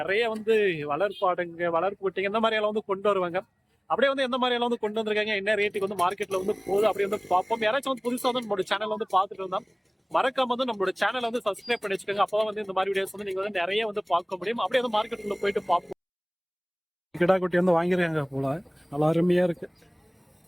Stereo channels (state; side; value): identical; both; correlation 1.00